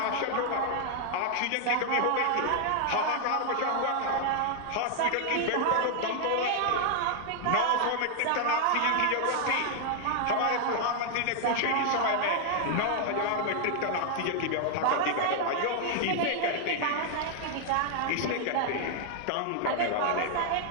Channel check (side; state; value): both; different; correlation 0.00